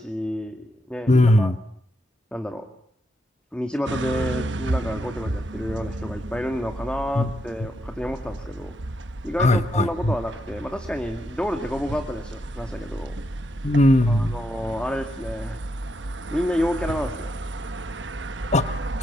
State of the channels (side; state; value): both; normal; correlation 0.80